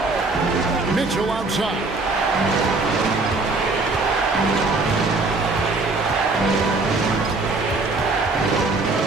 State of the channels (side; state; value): left; quieter; 3.5 dB